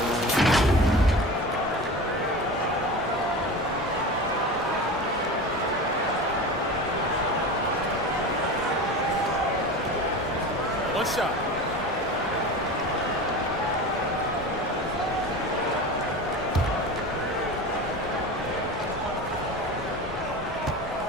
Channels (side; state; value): both; normal; correlation 0.31